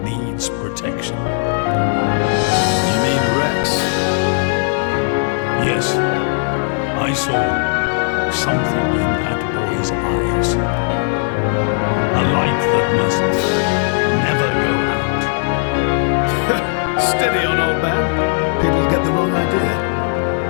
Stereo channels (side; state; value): right; silent; digital silence